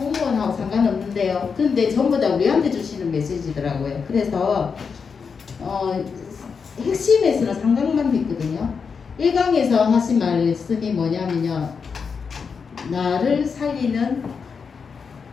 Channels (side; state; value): right; quieter; 5.7 dB